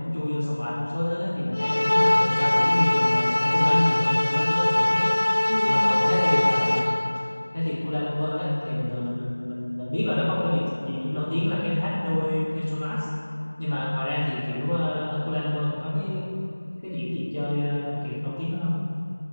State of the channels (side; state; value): both; inverted; correlation -1.00